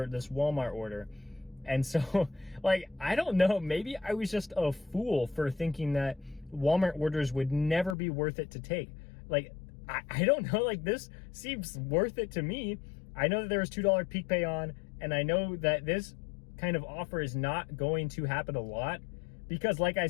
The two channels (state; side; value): drops out; right; at 8.0 s